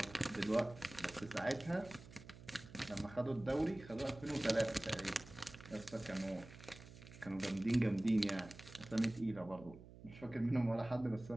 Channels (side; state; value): right; noise; hum, 17 dB below the sound